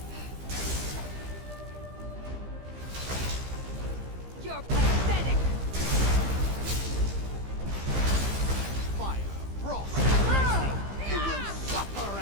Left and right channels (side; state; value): left; late; 15 ms